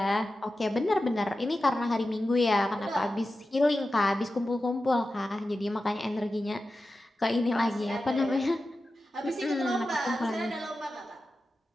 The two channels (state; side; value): normal; both; correlation 0.93